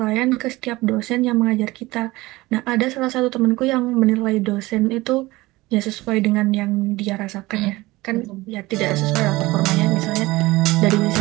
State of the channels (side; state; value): left; quieter; 20.0 dB